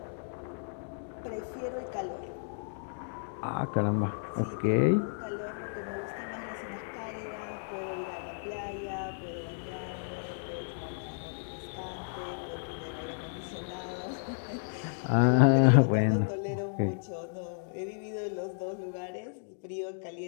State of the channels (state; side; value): silent; right; digital silence